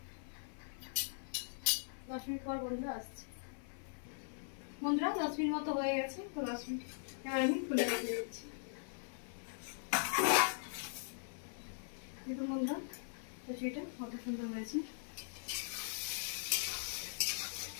10 মিনিট পর বন্ধুরা আসছে। বন্ধুরা 10 মিনিট মতো হয়ে গেছে, তো 10 মিনিট এবার আমি খুলে রেখে দিচ্ছি। দেখুন বন্ধুরা কচুরিটা কত সুন্দর হয়েছে।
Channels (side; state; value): right; silent; 51 dB below the other